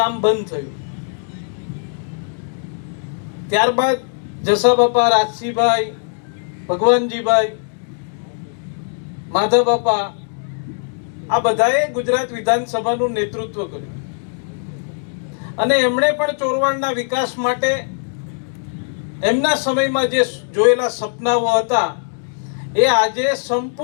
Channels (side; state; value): right; silent; digital silence